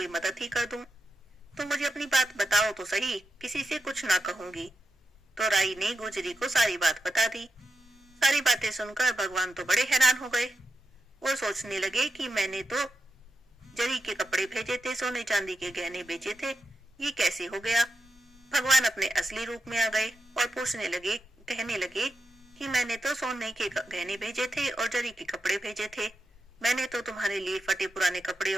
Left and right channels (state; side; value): normal; both; correlation 0.88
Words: मदद ही कर दूं। तुम मुझे अपनी बात बताओ तो सही, किसी से कुछ ना कहूंगी। तो राई ने गुजरी को सारी बात बता दी। सारी बातें सुनकर भगवान तो बड़े हैरान हो गए। वो सोचने लगे कि मैंने तो जरी के कपड़े भेजे थे, सोने चांदी के गहने बेचे थे, ये कैसे हो गया। भगवान अपने असली रूप में आ गए और कहने लगे कि मैंने तो सोने के गहने भेजे थे और जरी के कपड़े भेजे थे, मैंने तो तुम्हारे लिए फटे पुराने कपड़े